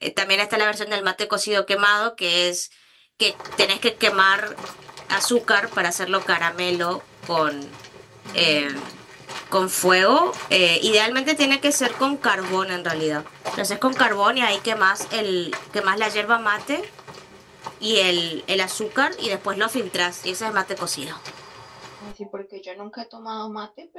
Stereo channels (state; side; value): identical; both; correlation 1.00